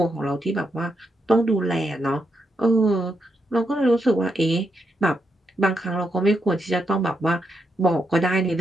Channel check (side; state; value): both; normal; correlation 0.82